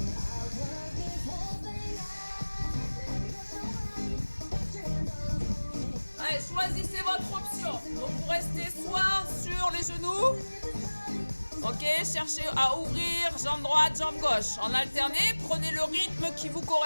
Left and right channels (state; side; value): inverted; both; correlation -1.00